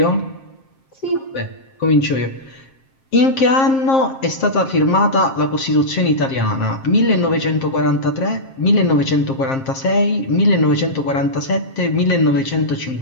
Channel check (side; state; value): right; late; 7.5 ms